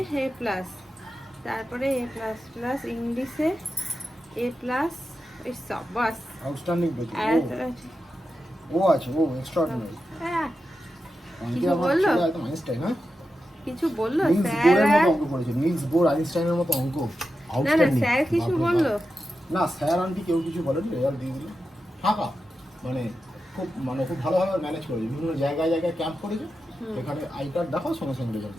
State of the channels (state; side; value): normal; both; correlation 0.90